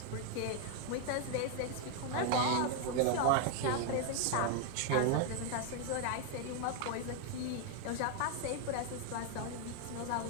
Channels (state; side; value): different; both; correlation 0.00